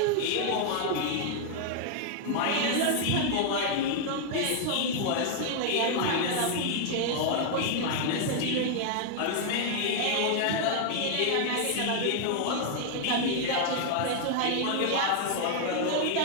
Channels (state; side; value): different; both; correlation 0.00